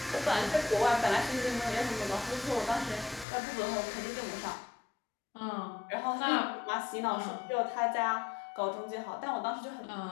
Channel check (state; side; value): drops out; right; at 3.2 s